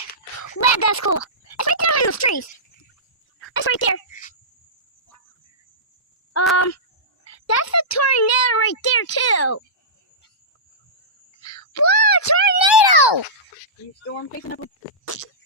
Wow, that's cool. It's right there in those trees. It's right there. That's a tornado right there too. Whoa, tornado! You storm chasing up?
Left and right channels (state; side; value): normal; both; correlation -0.18